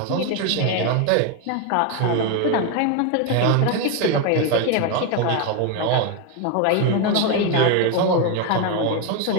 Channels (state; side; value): different; both; correlation 0.02